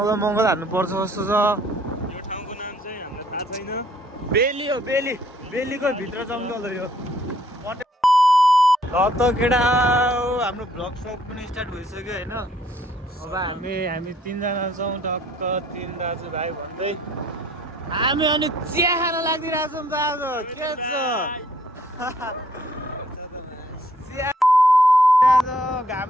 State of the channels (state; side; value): normal; both; correlation 0.63